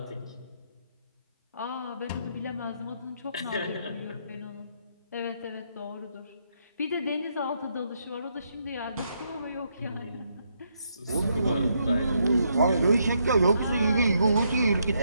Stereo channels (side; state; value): both; inverted; correlation -0.76